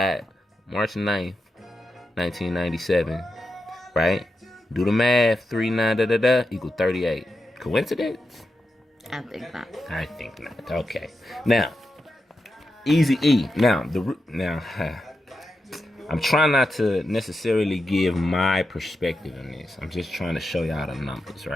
March 9th, 1997. Right? Do the math. 3, 9, equal 38. Coincidence? I think not. I think not. Okay. Now, Easy E. Now, I'm trying not to necessarily give my perspective on this. I'm just trying to show y'all the numbers,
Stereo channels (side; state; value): both; normal; correlation 0.88